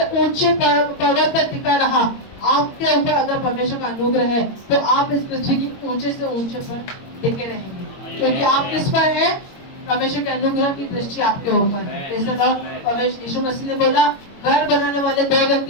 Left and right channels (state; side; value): late; right; 22 ms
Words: ऊंचे पर्वत पर टिका रहा। आपके ऊपर अगर परमेश्वर का अनुग्रह है तो आप इस पृथ्वी की ऊंचे से ऊंचे पर टिके रहेंगे, क्योंकि आप किस पर है? परमेश्वर के अनुग्रह की दृष्टि आपके ऊपर है। परमेश्वर यीशु मसीह ने बोला, घर बनाने वाले 2